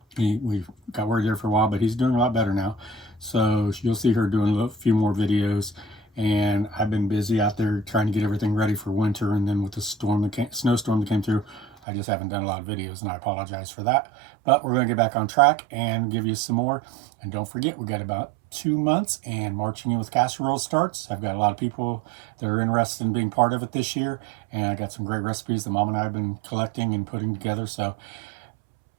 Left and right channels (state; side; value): drops out; left; at 11.7 s